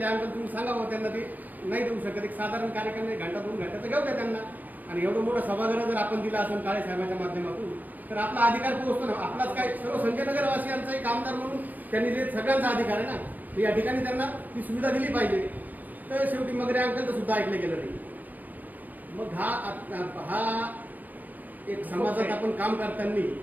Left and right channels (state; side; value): late; left; 0.085 ms